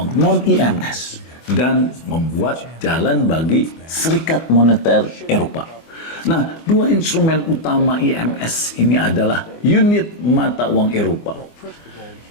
non-EMS, dan membuat jalan bagi Serikat Moneter Eropa. Nah, dua instrumen utama EMS ini adalah unit mata uang Eropa,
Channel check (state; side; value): late; right; 24 ms